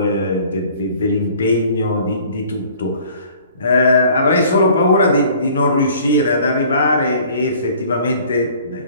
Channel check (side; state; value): both; inverted; correlation -0.53